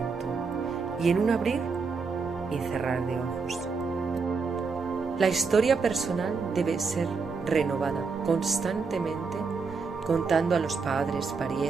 y en un abrir y cerrar de ojos. La historia personal debe ser renovada constantemente, contando a los padres,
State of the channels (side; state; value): left; quieter; 4.8 dB